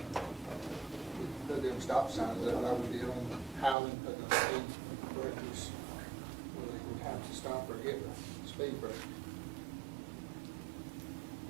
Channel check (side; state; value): left; drops out; at 3.8 s